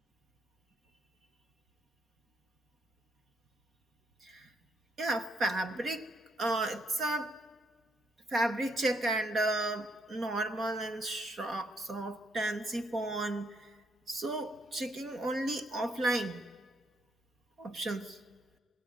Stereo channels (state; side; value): normal; both; correlation 0.72